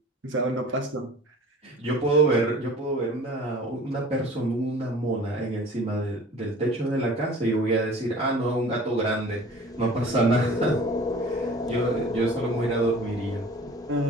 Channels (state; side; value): normal; both; correlation 0.45